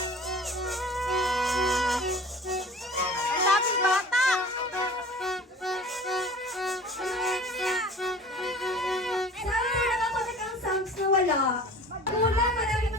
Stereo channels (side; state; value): both; normal; correlation 0.43